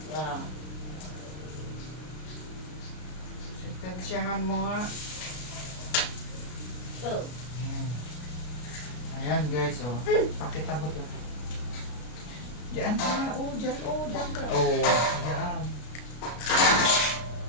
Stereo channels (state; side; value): late; right; 33 ms